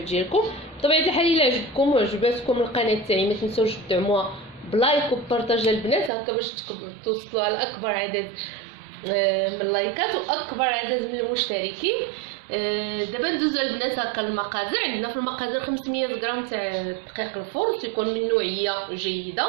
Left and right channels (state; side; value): drops out; left; at 6.1 s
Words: ديالكم. بطبيعه الحال الا عجبكم وعجباتكم القناه تاعي ما تنساوش تدعموها بلايك وبارطاج البنات هكا باش توصلوا على اكبر عدد من اللايكات واكبر عدد من المشتركين. دابا ندوزو البنات هكا المقادير. عندنا في المقادير 500 غرام تاع دقيق الفرن تيكون من نوعيه جيده.